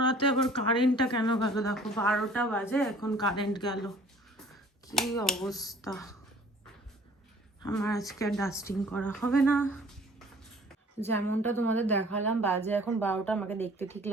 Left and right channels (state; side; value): normal; both; correlation 0.52